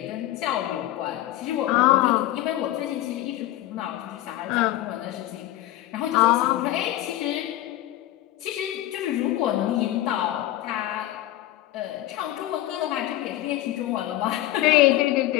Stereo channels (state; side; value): quieter; right; 15.0 dB